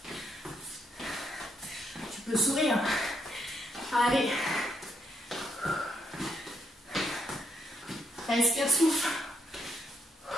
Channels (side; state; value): both; normal; correlation 0.76